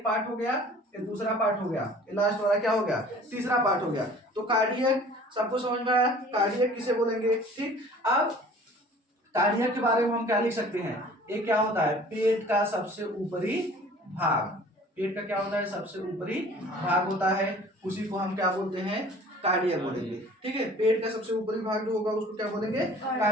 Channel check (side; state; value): both; normal; correlation 0.48